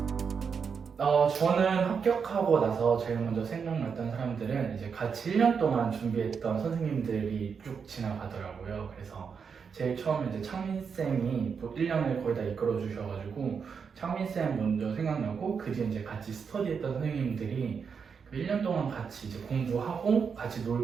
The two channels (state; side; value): quieter; left; 6.2 dB